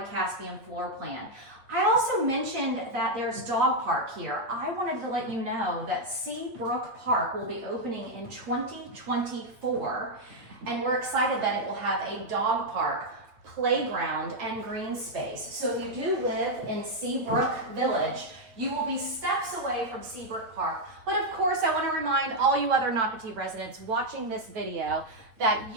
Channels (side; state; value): left; late; 8.7 ms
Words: Caspian floor plan. I also mentioned that there's dog park here. I wanted to let you know that Seabrook Park will be opening in 2024. And we're excited that it will have a dog park, playground, and green space. So if you do live in Seabrook Village, you will be steps away from Seabrook Park. But of course, I want to remind all you other Nocatee residents watching this video that